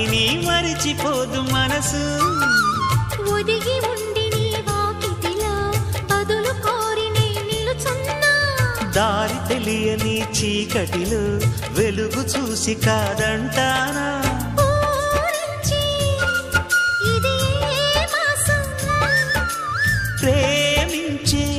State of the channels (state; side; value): identical; both; correlation 1.00